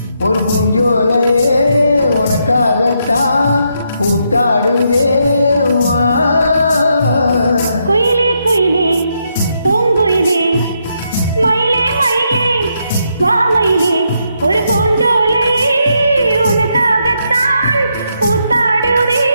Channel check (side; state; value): both; inverted; correlation -0.79